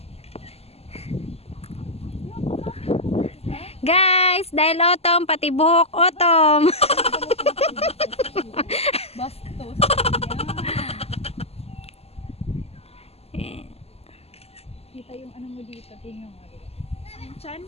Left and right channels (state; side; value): late; right; 0.29 ms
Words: Guys, dahil autumn, pati buhok autumn. Bastos. Kita yung ano mo dito. Tingnan mo. Yung chan?